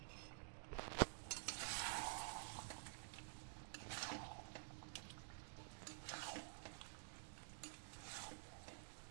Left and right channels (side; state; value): left; silent; digital silence